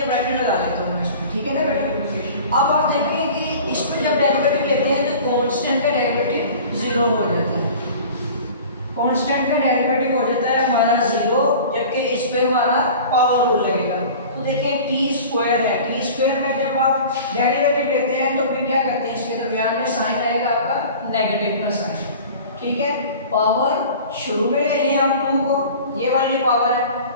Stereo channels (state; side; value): inverted; both; correlation -0.41